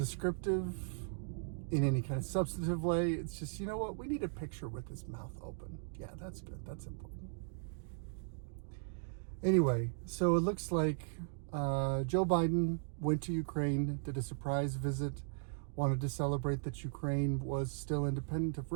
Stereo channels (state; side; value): silent; left; digital silence